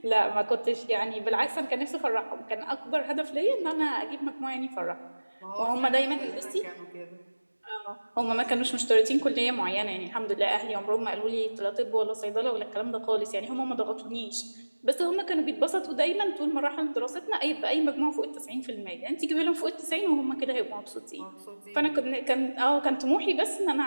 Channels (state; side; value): inverted; both; correlation -1.00